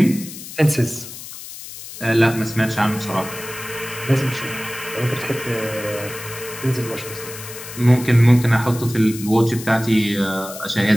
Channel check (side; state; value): left; noise; hiss, 13 dB below the sound